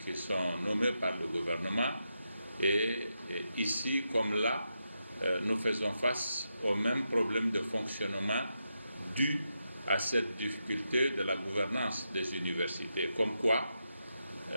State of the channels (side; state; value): both; inverted; correlation -0.85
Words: qui sont nommés par le gouvernement, et ici comme là, nous faisons face au même problème de fonctionnement dû à cette difficulté de la gouvernance des universités. Comme quoi,